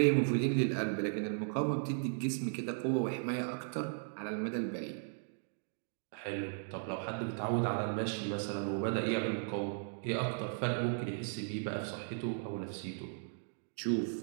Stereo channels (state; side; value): silent; left; digital silence